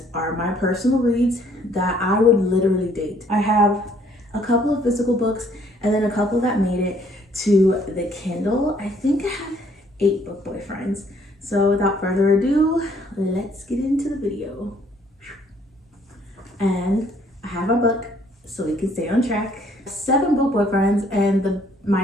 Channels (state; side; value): normal; both; correlation 0.63